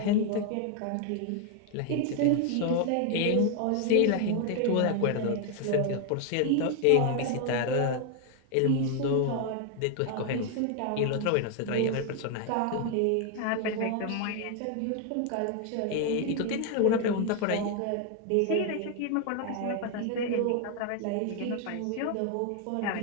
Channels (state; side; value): different; both; correlation 0.01